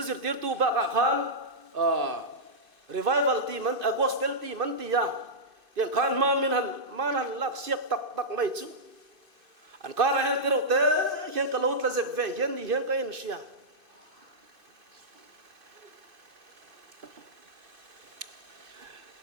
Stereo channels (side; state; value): left; late; 2.5 ms